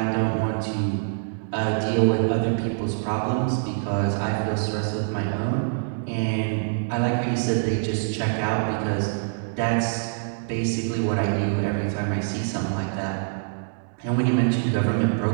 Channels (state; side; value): silent; left; digital silence